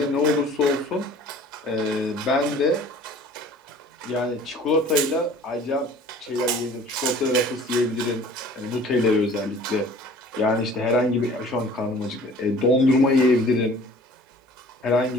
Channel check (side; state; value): both; normal; correlation 0.48